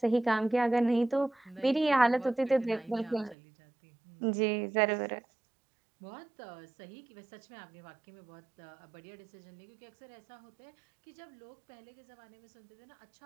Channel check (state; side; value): drops out; left; at 3.4 s